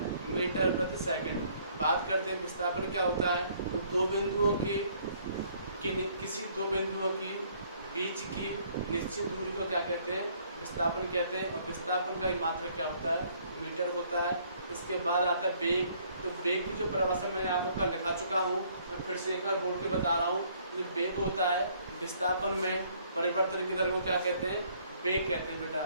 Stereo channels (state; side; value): inverted; both; correlation -0.63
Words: मीटर प्रति सेकंड। बात करते हैं विस्थापन क्या होता है। तो किसी दो बिंदुओं की बीच की निश्चित दूरी को क्या कहते हैं, विस्थापन कहते हैं। और विस्थापन का मात्रक क्या होता है, मीटर होता है। इसके बाद आता है वेग। तो वेग की जो परिभाषा मैं आपको कल दिखा चुका हूँ, मैं फिर से एक बार बोल के बता रहा हूँ। तो वेग होता है विस्थापन में परिवर्तन की दर को क्या कहते हैं, वेग कहते हैं